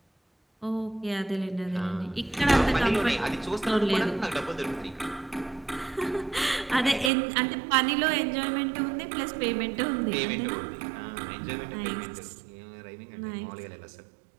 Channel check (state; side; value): drops out; left; at 7.1 s